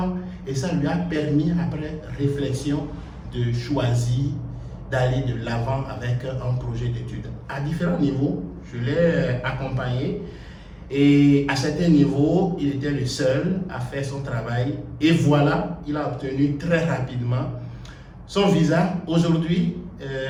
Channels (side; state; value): both; identical; correlation 1.00